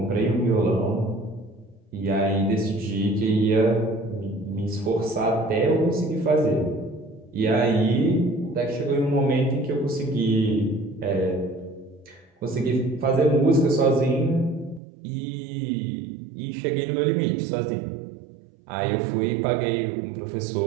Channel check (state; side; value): drops out; left; at 14.8 s